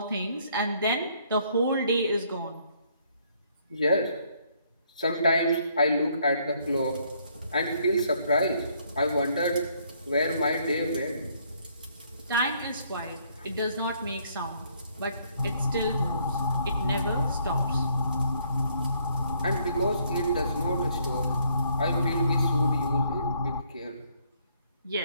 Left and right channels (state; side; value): inverted; both; correlation -0.68